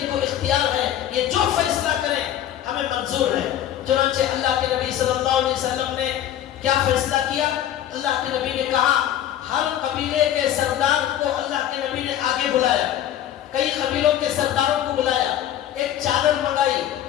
کے نبی صلی اللہ علیہ وسلم نے کیا فیصلہ کیا؟ اللہ کے نبی نے کہا ہر قبیلے کے سردار کو اللہ کے نبی نے آگے بلایا، کئی قبیلوں کے سرداروں کو بلایا، ایک چادر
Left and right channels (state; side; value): quieter; right; 11.4 dB